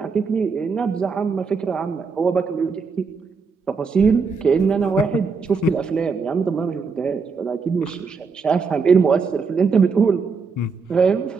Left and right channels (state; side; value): quieter; left; 5.0 dB